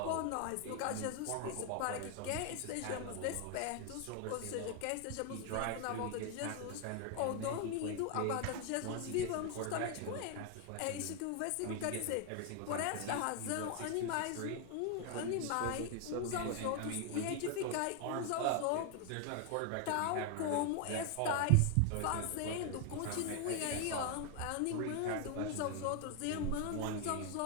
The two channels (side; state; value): both; different; correlation 0.00